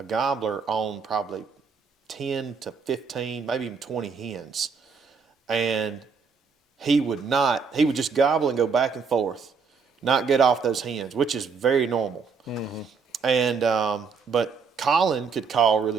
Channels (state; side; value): quieter; left; 5.5 dB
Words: gobbler on probably 10 to 15, maybe even 20 hens, and he would just gobble and go back and forth, not get off those hens, which is very normal. And but Colin could call